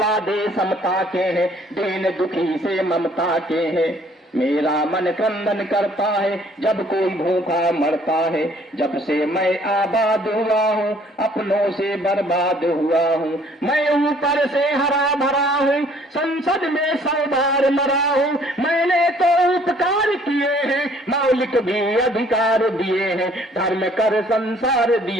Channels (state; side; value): normal; both; correlation 0.59